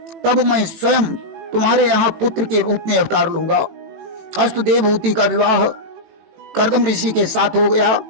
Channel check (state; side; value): late; left; 18 ms